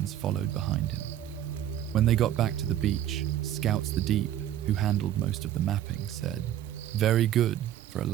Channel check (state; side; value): quieter; left; 11.6 dB